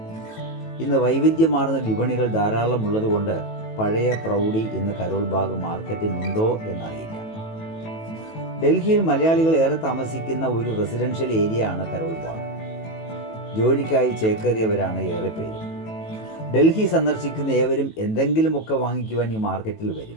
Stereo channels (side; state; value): right; late; 18 ms